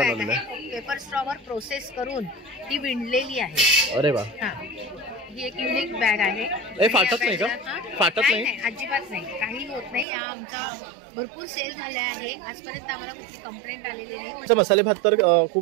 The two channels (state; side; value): drops out; left; at 10.1 s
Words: आहे. पेपर स्ट्रॉवर प्रोसेस करून ती विणलेली आहे. अरे वा, ही एक युनिक बॅग आहे. हे फाटत नाही का? फाटत नाही, अजिबात नाही, काही होत नाही. या आमचा भरपूर सेल झाला आहे. आजपर्यंत आम्हाला कुठली कंप्लेंट आलेली नाही. मसाले भात तर